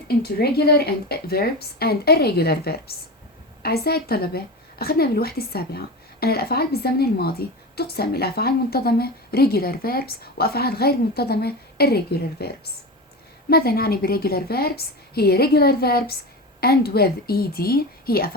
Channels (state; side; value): normal; both; correlation 0.25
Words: into regular and verbs and irregular verbs. أعزائي الطلبة، أخذنا بالوحدة السابعة أن الأفعال بالزمن الماضي تقسم إلى أفعال منتظمة regular verbs وأفعال غير منتظمة irregular verbs. ماذا نعني بالregular verbs؟ هي regular verbs and with ed هي